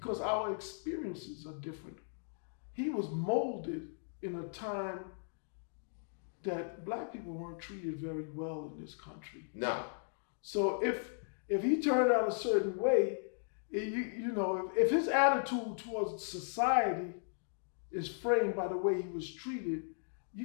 our experiences are different. He was molded in a time that black people weren't treated very well in this country. No. So if he turned out a certain way, You know, if his attitude towards society is framed by the way he was treated,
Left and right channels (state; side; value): silent; right; digital silence